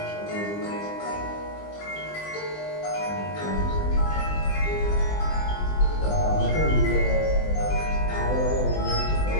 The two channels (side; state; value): right; late; 20 ms